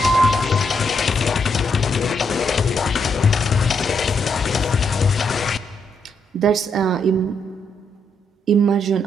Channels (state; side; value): normal; both; correlation 0.77